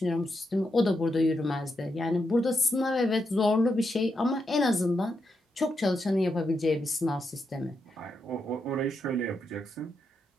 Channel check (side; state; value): both; normal; correlation 0.83